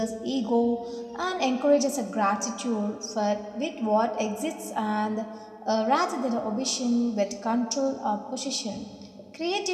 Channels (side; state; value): both; identical; correlation 1.00